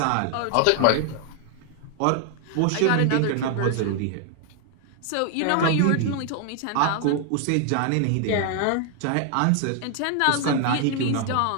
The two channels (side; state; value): both; different; correlation 0.00